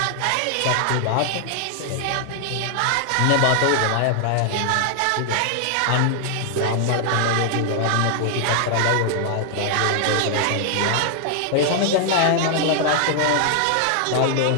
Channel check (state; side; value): different; both; correlation 0.00